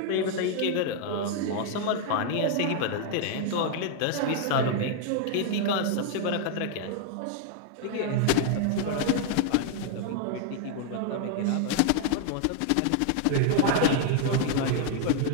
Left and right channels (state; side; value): different; both; correlation 0.00